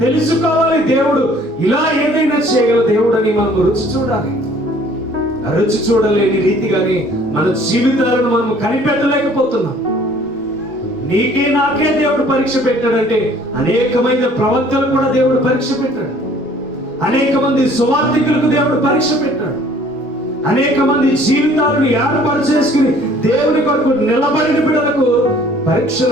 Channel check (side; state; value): both; normal; correlation 0.55